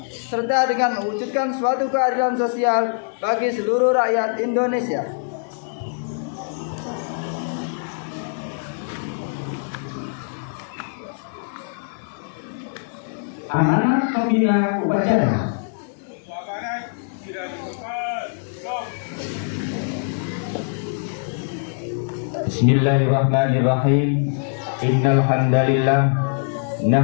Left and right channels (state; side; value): silent; right; digital silence